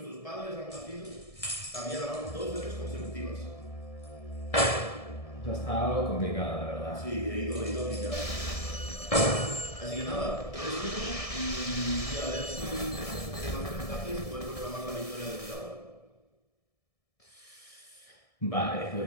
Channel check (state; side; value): late; right; 1.7 ms